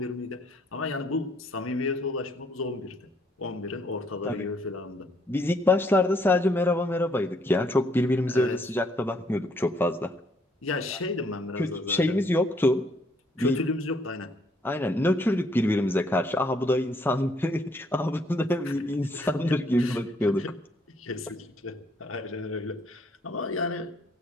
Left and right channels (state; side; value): normal; both; correlation 0.68